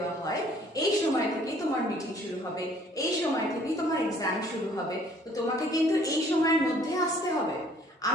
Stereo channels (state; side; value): normal; both; correlation 0.58